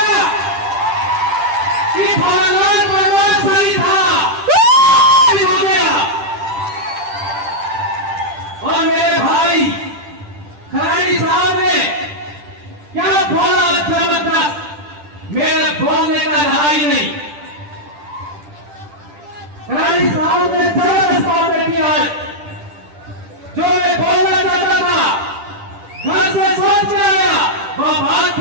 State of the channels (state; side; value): late; left; 10 ms